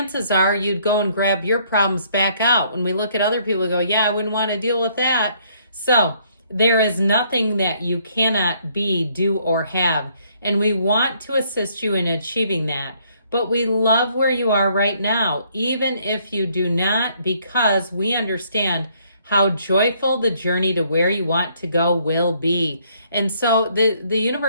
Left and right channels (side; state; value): both; inverted; correlation -0.66